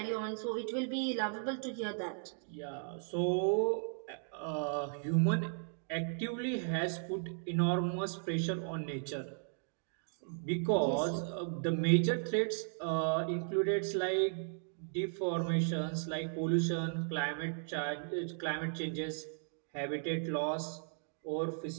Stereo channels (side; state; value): left; silent; digital silence